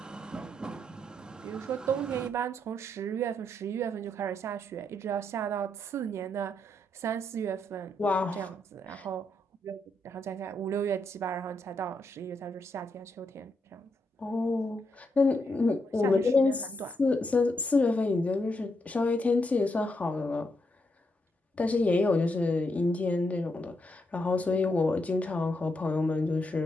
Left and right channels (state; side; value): normal; both; correlation 0.80